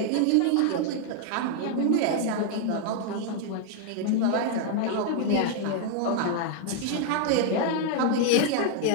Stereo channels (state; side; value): different; both; correlation 0.00